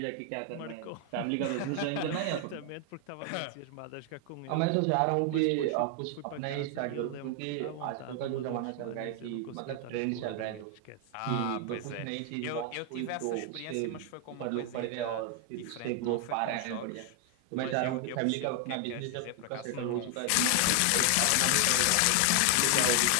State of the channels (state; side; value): different; both; correlation 0.00